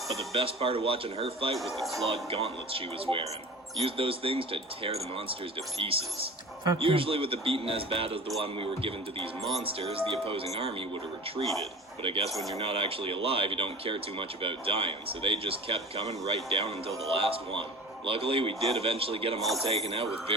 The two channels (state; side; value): normal; both; correlation 0.37